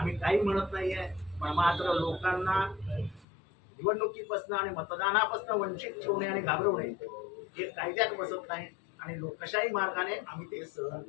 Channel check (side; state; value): right; drops out; at 3.2 s